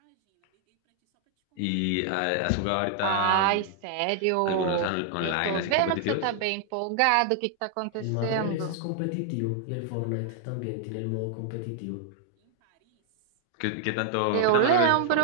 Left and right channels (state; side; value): different; both; correlation 0.00